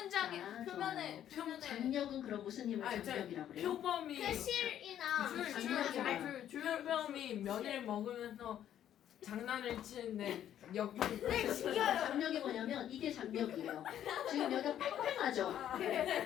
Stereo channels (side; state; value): right; quieter; 10.7 dB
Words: 아, 표면에 좋아요. 표면에 장력은 그럼 무슨 힘을 아니, 장력이라고 그래요? 표범이 그 실이나 장력이야. 표범이 면을 먹으면서 장난을 치는데 역할이 장력이 뭐냐면 이게 장력이에요. 지금 여기가 팽팽하죠?